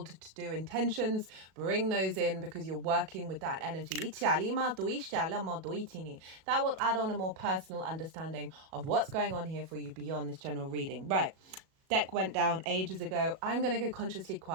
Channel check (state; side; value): late; left; 37 ms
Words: to do intentions, bring those in because you're working with that energy. That will add on a more personal understanding of what's going on here for you beyond this general reading. Right. Deck went down ages ago. I'm going to go consciously